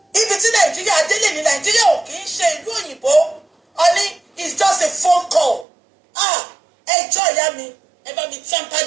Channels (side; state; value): left; drops out; at 5.7 s